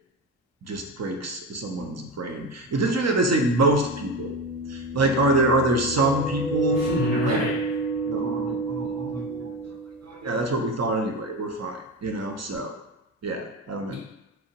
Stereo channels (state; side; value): normal; both; correlation 0.22